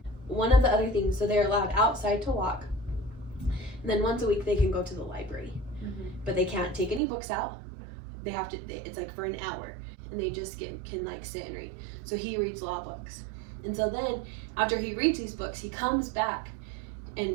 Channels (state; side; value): drops out; left; at 7.0 s